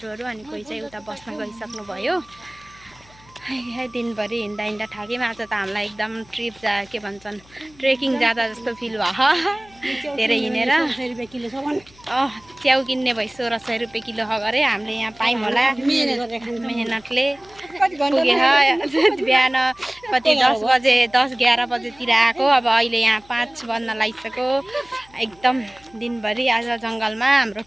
अनि कोही चाहिँ उता बस्न गइसक्नु भयो दिनभरि हिँड्दा हिँड्दा थाक्यौँ आज त हामीलाई एकदम ट्रिप के भन्छन् ट्रेकिङ जाँदा जस्तो फिल भयो धेरै हिँडेर च्याउ किन्ने भइ 1600 रुपियाँ किलो गरे हामीले यहाँ पायौँ होला मेहनतले पुगेर बिहान कति 10 बजे 10-11 बजेतिर आएको अब अहिले यहाँ 5 बज्न लागिसक्यो एकदम दिनभरि आज जङ्गलमा हाम्रो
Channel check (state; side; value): noise; left; hum, 27 dB below the sound